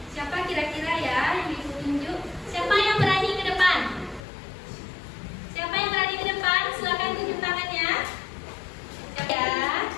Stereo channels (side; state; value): right; drops out; at 4.2 s